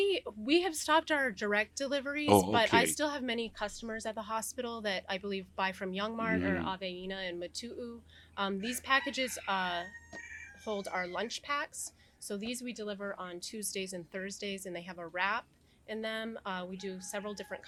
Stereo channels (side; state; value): both; identical; correlation 1.00